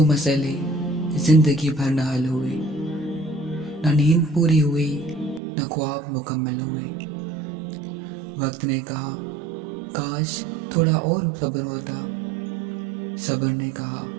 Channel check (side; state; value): left; drops out; at 5.4 s